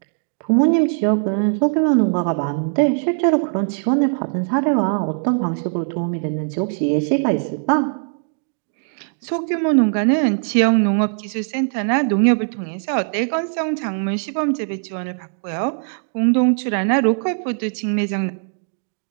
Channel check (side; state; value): left; silent; digital silence